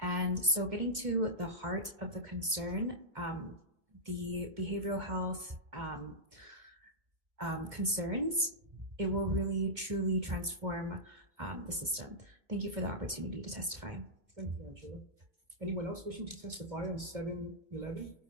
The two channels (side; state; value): left; late; 2.2 ms